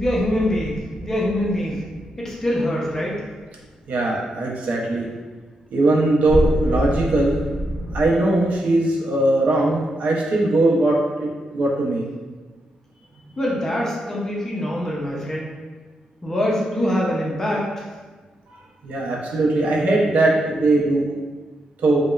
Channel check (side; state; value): both; normal; correlation 0.83